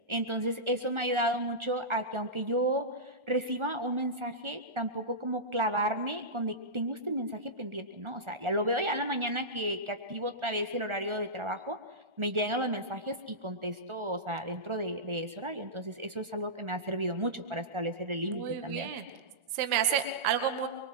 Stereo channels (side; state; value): left; late; 1.4 ms